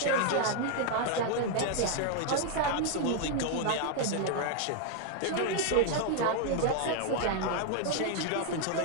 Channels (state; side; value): different; both; correlation 0.00